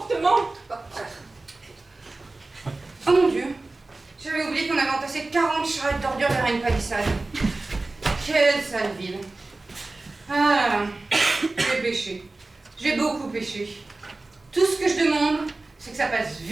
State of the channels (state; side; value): quieter; left; 3.2 dB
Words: Oh mon Dieu, j'avais oublié qu'on avait entassé 40 charrettes d'ordures derrière une palissade. Quelle sale ville. Ah là là, j'ai péché. J'ai beaucoup péché. Tout ce que je demande, c'est que ça passe